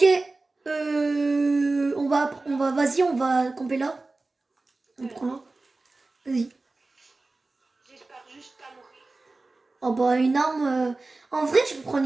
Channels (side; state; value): left; quieter; 3.3 dB